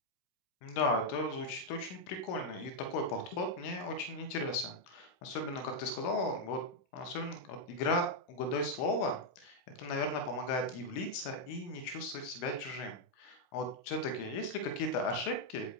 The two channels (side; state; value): right; late; 16 ms